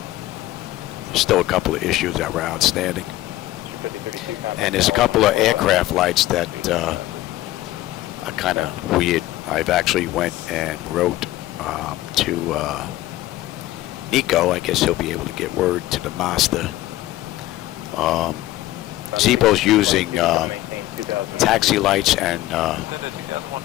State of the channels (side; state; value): right; quieter; 15.9 dB